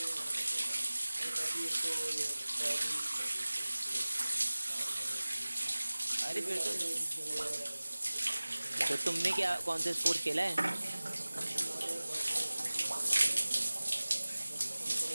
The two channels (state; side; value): inverted; both; correlation -1.00